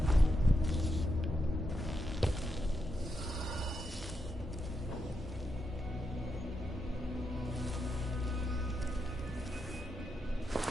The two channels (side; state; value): both; normal; correlation 0.84